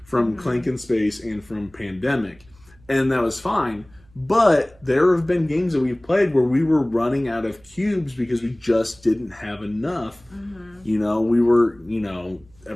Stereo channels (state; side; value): noise; right; hum, 29 dB below the sound